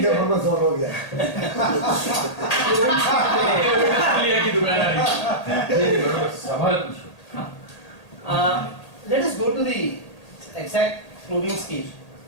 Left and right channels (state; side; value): late; right; 1.8 ms